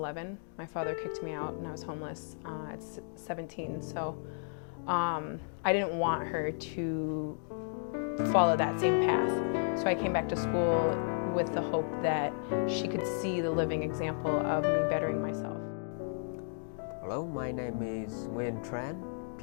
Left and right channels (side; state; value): right; silent; digital silence